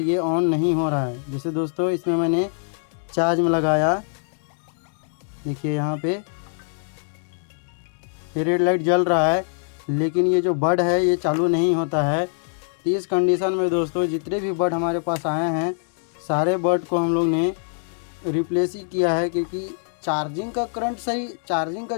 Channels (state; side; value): silent; right; 63 dB below the other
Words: ये ऑन नहीं हो रहा है। जैसे दोस्तों इसमें मैंने चार्ज में लगाया, देखिए यहाँ पे ये रेड लाइट जल रहा है, लेकिन ये जो बड है ये चालू नहीं होता है। तो इस कंडीशन में दोस्तों जितने भी बड हमारे पास आए हैं सारे बड को हम लोग ने रिप्लेस ही किया है, क्योंकि चार्जिंग का करंट सही, चार्जिंग का